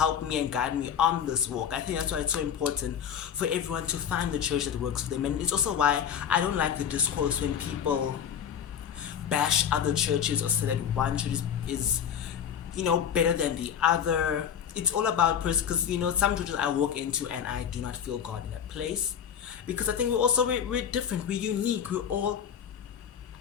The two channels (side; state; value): right; quieter; 8.5 dB